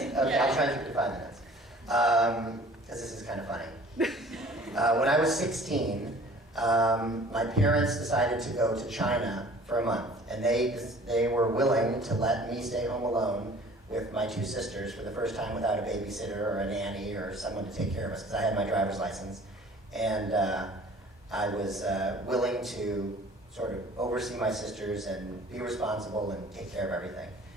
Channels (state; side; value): normal; both; correlation 0.49